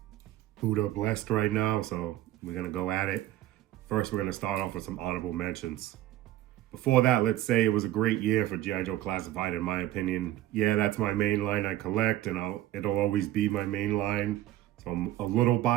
Buddha blessed right now, so we're going to go at it. First, we're going to start off with some honorable mentions. Before that, let's say it was a great year for G.I. Joe Classified, in my opinion. Yeah, that's my main line I collect, and it'll always be my main line. So I'm a little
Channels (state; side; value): quieter; left; 14.5 dB